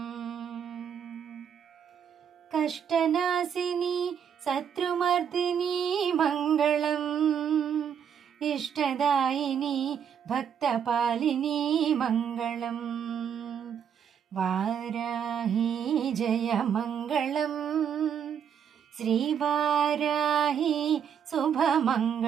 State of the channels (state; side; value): quieter; left; 8.0 dB